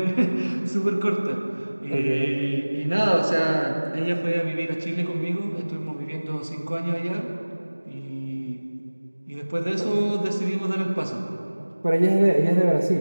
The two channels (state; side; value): inverted; both; correlation -1.00